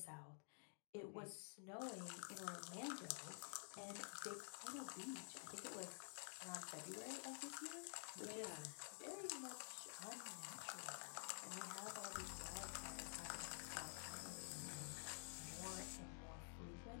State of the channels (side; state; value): right; silent; digital silence